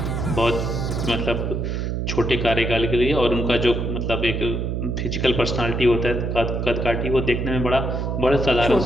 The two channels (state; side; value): noise; right; hum, 1 dB below the sound